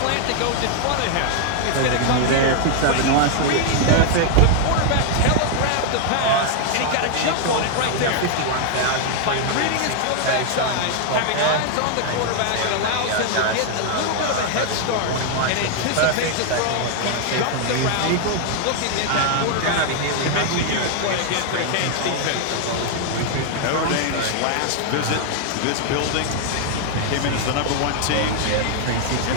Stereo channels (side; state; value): both; different; correlation 0.00